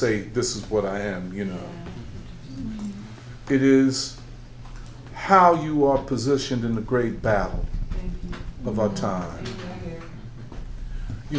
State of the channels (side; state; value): both; identical; correlation 1.00